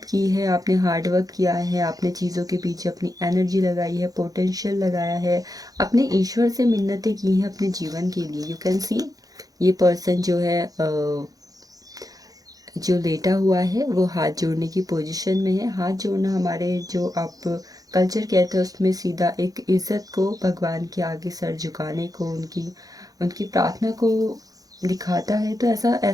की है, आपने हार्ड वर्क किया है, आपने चीज़ों के पीछे अपनी एनर्जी लगाई है, पोटेंशियल लगाया है, अपने ईश्वर से मिन्नतें की हैं अपने जीवन के लिए। यू कैन सी ये पर्सन जो है जो लेटा हुआ है वो हाथ जोड़ने की पोजीशन में है। हाथ जोड़ना हमारे जो आप कल्चर कहते हैं उसमें सीधा एक इज़्ज़त को, भगवान के आगे सर झुकाने को, उनकी उनकी प्रार्थना को दिखाता है। तो ऐसा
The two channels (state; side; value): late; left; 0.18 ms